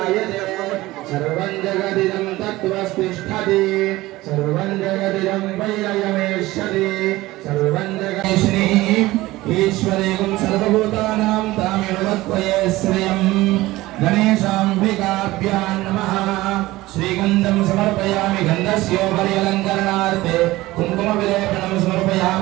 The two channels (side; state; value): left; quieter; 18.3 dB